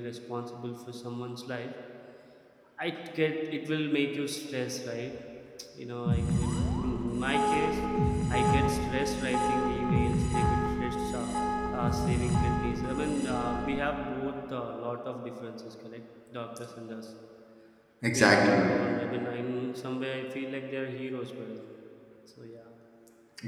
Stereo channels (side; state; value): both; identical; correlation 1.00